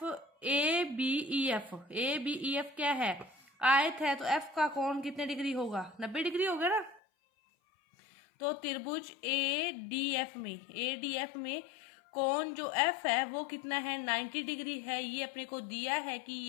बी ई एफ क्या है, आयत है, तो एफ का कोण कितने डिग्री होगा, 90 डिग्री होगा ना। तो त्रिभुज ए डी एफ में कोण जो एफ है वो कितना है, 90 डिग्री है। ये अपने को दिया है कि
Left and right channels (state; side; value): drops out; right; at 7.0 s